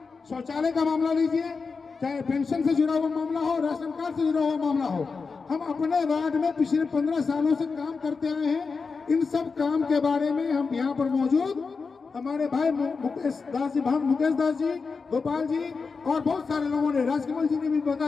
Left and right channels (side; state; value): right; quieter; 4.8 dB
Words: शौचालय का मामला लीजिए, चाहे पेंशन से जुड़ा हुआ मामला हो, राशन कार्ड से जुड़ा हुआ मामला हो। हम अपने वार्ड में पिछले 15 सालों से काम करते आए हैं। इन सब काम के बारे में हम यहाँ पर मौजूद हमारे भाई मुकेश दास जी, गोपाल जी और बहुत सारे लोगों ने, राजकमल जी ने भी